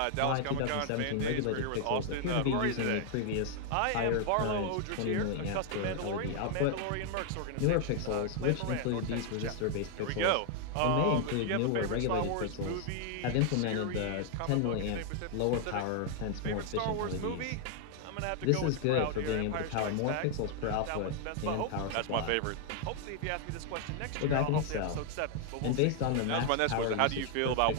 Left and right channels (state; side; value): different; both; correlation 0.00